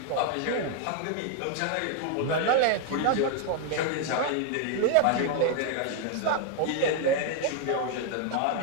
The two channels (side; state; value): both; different; correlation 0.00